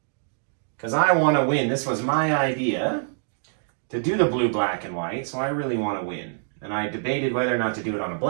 Because I want to win. This was my idea to do the blue, black, and white, so I really want to win. And I debated whether or not to do it on a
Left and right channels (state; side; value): silent; left; digital silence